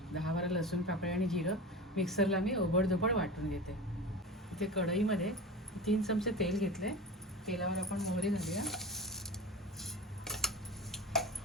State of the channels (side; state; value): both; normal; correlation 0.30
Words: 10-12 लसूण पाकळ्या आणि जिरं मिक्सरला मी ओबडधोबड वाटून घेते. इथे कढईमध्ये 3 चमचे तेल घेतले. तेलावर आपण मोहरी घालूया,